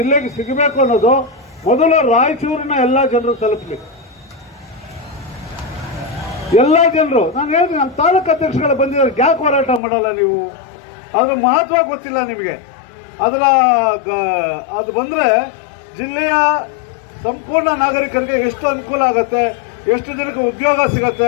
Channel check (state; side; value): drops out; right; at 9.8 s